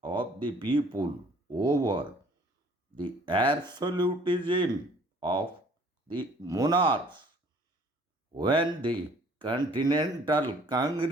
of the people over the absolutism of the monarchs. When the Continental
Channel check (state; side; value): normal; both; correlation 0.56